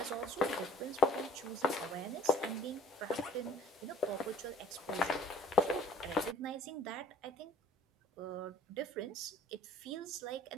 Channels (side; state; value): both; normal; correlation 0.53